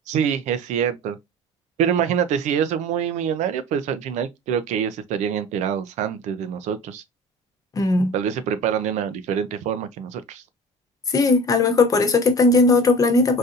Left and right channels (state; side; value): normal; both; correlation 0.38